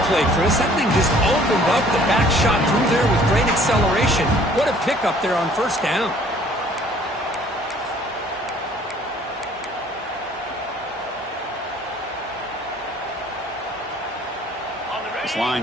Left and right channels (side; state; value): both; normal; correlation 0.56